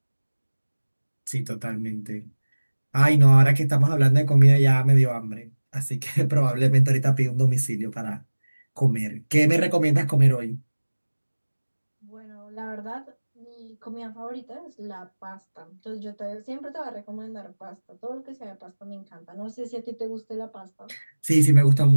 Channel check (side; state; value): both; inverted; correlation -1.00